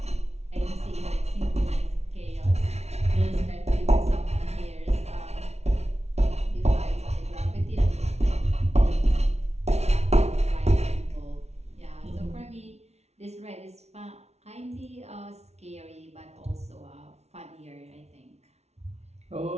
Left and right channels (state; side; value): late; left; 0.31 ms